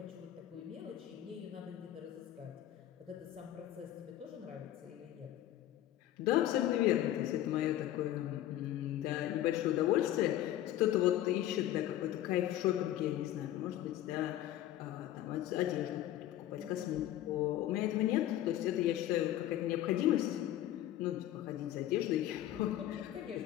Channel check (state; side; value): quieter; right; 13.1 dB